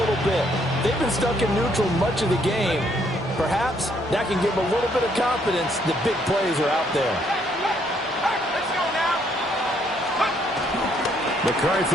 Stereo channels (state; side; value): normal; both; correlation 0.69